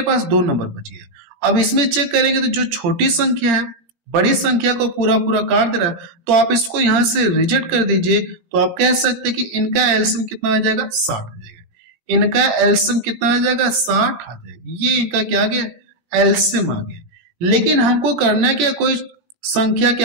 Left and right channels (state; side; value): late; left; 17 ms